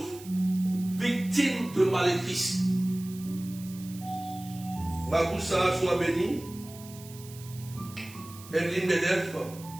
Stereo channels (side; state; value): right; noise; hiss, 18 dB below the sound